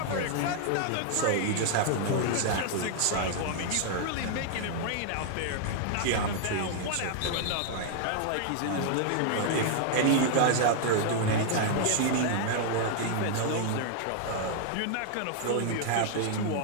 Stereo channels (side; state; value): both; different; correlation -0.01